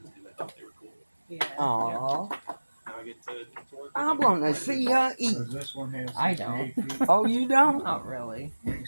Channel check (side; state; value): both; inverted; correlation -1.00